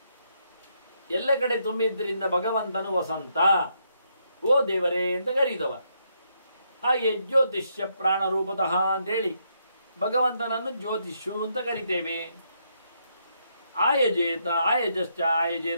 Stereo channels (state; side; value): inverted; both; correlation -0.76